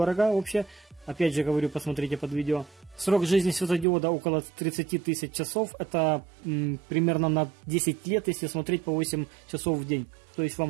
вообще. Опять же говорю, посмотрите под видео. Срок жизни светодиода около 30 тысяч часов. Это примерно на 10 лет, если смотреть по 8 часов в день. То есть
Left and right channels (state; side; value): drops out; left; at 3.9 s